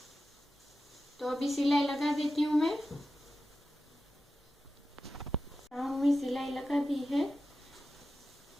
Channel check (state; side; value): normal; both; correlation 0.92